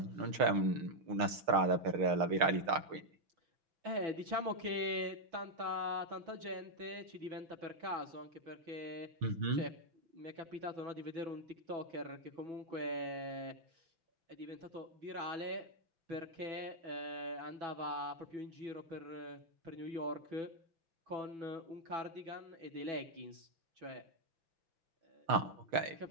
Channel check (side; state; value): left; late; 6.5 ms